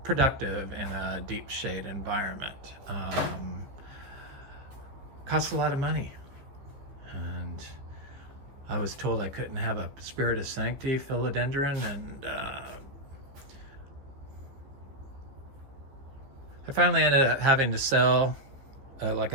productive in a deep shade environment costs a lot of money. And I was told I couldn't have a Spirit of Sanctity philodendron, and I finally ended up having to sell like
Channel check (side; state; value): left; late; 15 ms